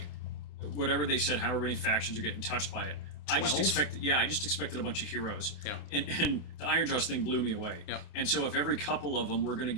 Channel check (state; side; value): late; right; 28 ms